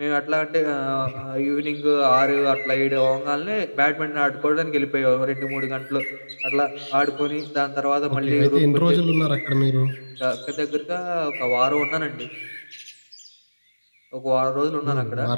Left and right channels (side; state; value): both; inverted; correlation -1.00